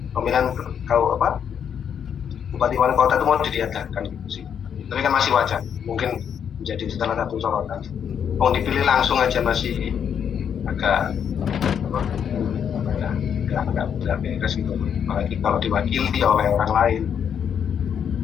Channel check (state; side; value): quieter; right; 8.1 dB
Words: pemilihan bupati wali kota itu mau diadakan gitu sih. Tapi kan masih wacana, mungkin menjadi salah satu sorotan. Mau dipilih langsung aja masih agak beres gitu, apalagi kalau diwakili oleh orang lain.